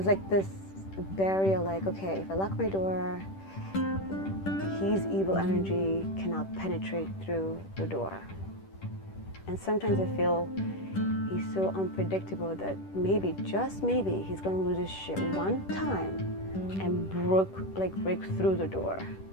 like this barrier, like, okay, if I lock my door, his evil energy cannot penetrate through the door. And sometimes I feel he's so unpredictable that maybe, just maybe, he's going to lose his shit one time and break through the door.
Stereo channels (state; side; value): late; right; 10 ms